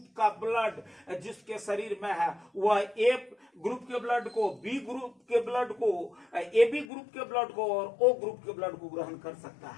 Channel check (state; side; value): drops out; right; at 6.9 s